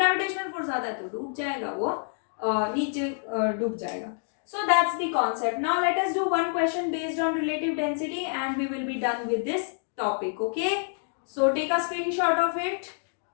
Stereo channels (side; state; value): right; silent; 60 dB below the other